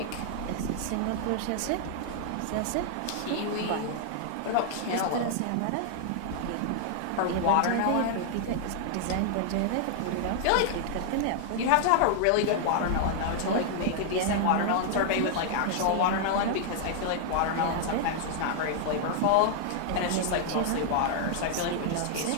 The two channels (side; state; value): both; different; correlation 0.00